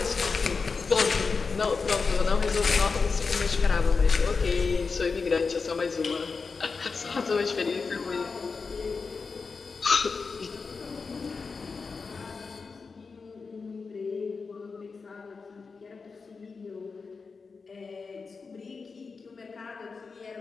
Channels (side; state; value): right; quieter; 4.7 dB